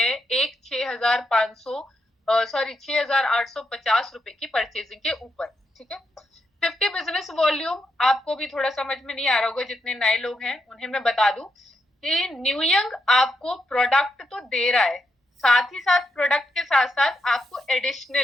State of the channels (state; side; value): normal; both; correlation 0.82